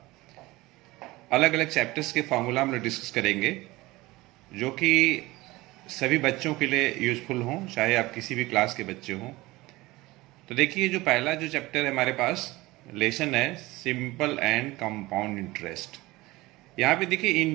अलग अलग चैप्टर्स के फार्मूला हम लोग डिस्कस करेंगे जो कि सभी बच्चों के लिए यूज़फुल हों, चाहे आप किसी भी क्लास के बच्चे हों। तो देखिए, जो पहला जो चैप्टर है हमारे पास लेसन है सिंपल एंड कंपाउंड इंटरेस्ट। यहाँ पे देखिए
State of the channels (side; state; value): left; quieter; 20.1 dB